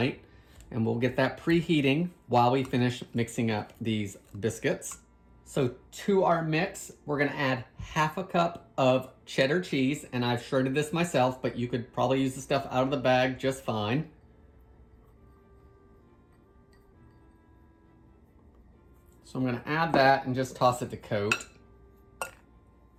and we'll get that preheating while we finish mixing up these biscuits. So to our mix, we're going to add 1/2 cup of cheddar cheese, and I've shredded this myself, but you could probably use the stuff out of the bag just fine. So I'm going to add that and just toss it to coat.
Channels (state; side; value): identical; both; correlation 1.00